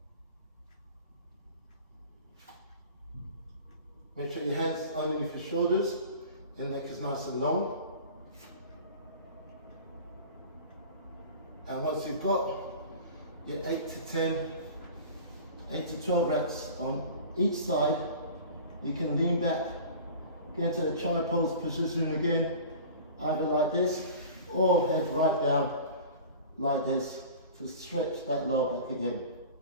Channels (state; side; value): inverted; both; correlation -0.39